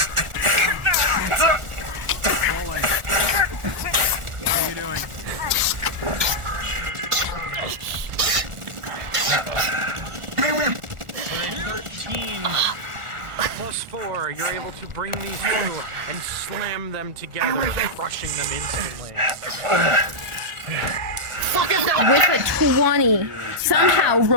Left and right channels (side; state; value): left; late; 1.4 ms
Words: You're able to bring these two and slam them together, crushing them instantly. With a 20, somehow,